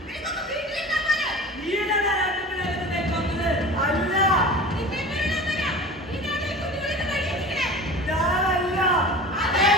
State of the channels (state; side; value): normal; both; correlation 0.37